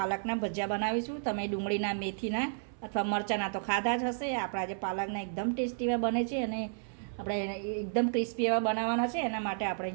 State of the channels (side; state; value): left; silent; 56 dB below the other